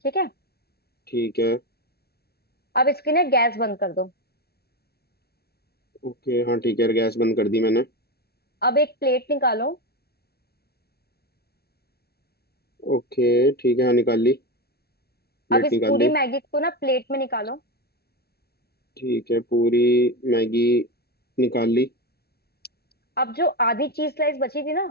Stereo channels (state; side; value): late; right; 0.46 ms